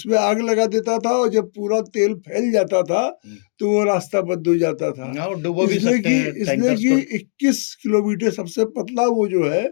आग लगा देता था, और जब पूरा तेल फैल जाता था तो वो रास्ता बंद हो जाता था। इसलिए कि 21 किलोमीटर सबसे पतला वो जो है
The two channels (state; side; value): silent; right; digital silence